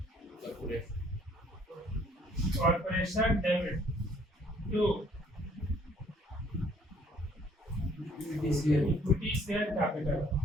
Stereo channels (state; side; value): normal; both; correlation 0.61